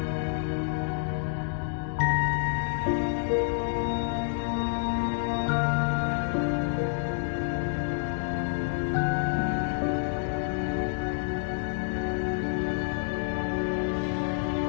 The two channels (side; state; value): right; silent; digital silence